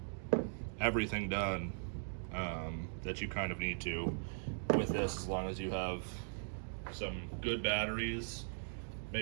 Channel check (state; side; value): silent; left; digital silence